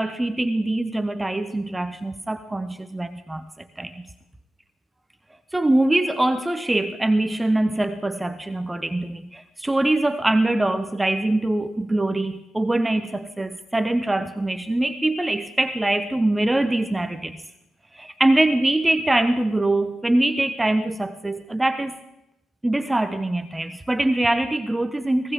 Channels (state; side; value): normal; both; correlation 0.98